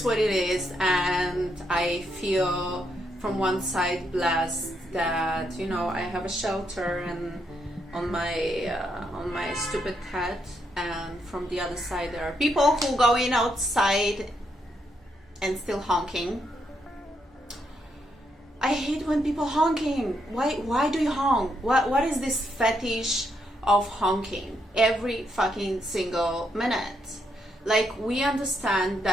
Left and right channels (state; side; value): normal; both; correlation 0.78